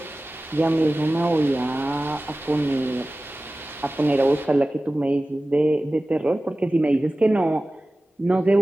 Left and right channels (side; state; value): both; normal; correlation 0.96